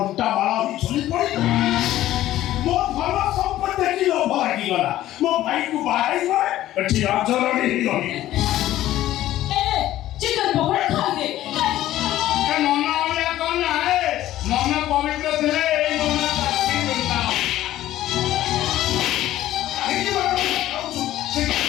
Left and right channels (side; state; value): right; quieter; 14.1 dB